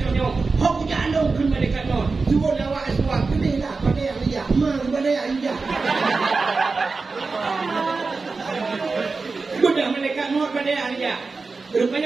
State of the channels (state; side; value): quieter; left; 4.1 dB